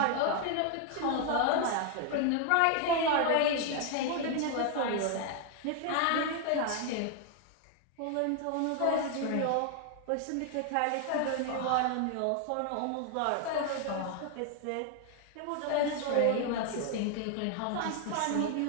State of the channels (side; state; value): both; different; correlation 0.00